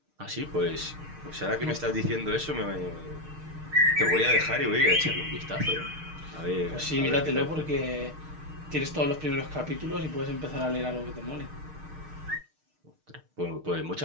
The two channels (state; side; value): late; left; 6.5 ms